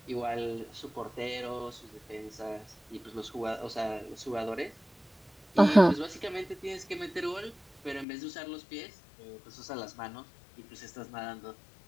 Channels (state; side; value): drops out; right; at 8.1 s